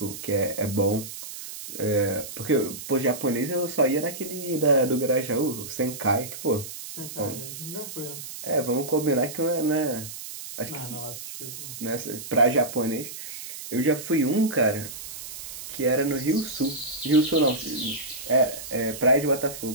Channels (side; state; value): right; noise; hiss, 10 dB below the sound